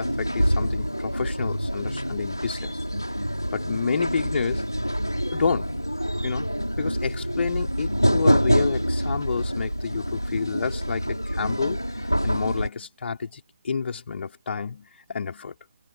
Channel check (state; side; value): inverted; both; correlation -0.92